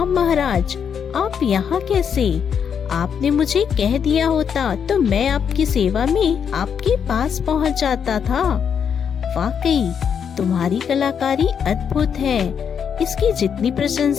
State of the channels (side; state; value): right; quieter; 7.4 dB